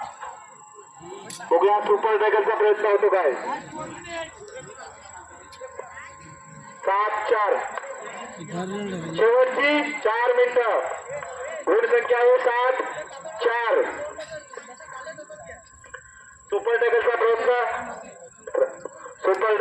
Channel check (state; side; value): identical; both; correlation 1.00